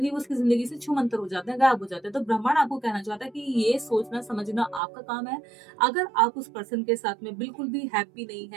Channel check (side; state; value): left; drops out; at 4.8 s